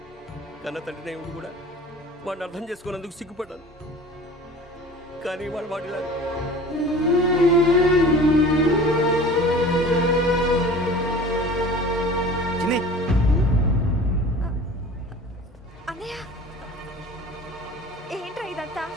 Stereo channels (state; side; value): normal; both; correlation 0.41